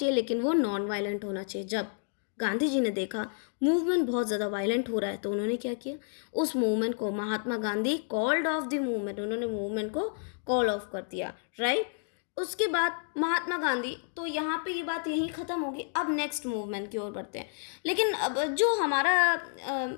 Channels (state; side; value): silent; right; 58 dB below the other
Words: लेकिन वो नॉन वायलेंट होना चाहिए। जब गांधी जी ने देखा मूवमेंट बहुत ज़्यादा वायलेंट हो रहा है तो उन्होंने क्या किया, उस मूवमेंट को, Mahatma Gandhi called off the movement, उन्होंने मूवमेंट को कॉल ऑफ कर दिया, राइट। उसके बाद महात्मा गांधी, तो यहाँ पे ये बात यहीं ख़त्म होगी। अब नेक्स्ट मूवमेंट की ओर बढ़ते हैं। लेकिन अब जो हमारा